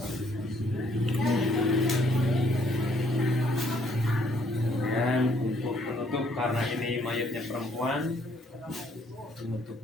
Dan untuk penutup, karena ini mayatnya perempuan, untuk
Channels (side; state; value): both; normal; correlation 0.66